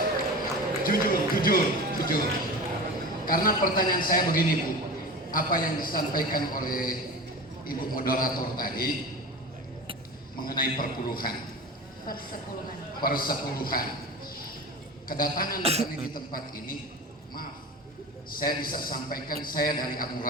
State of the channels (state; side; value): normal; both; correlation 0.31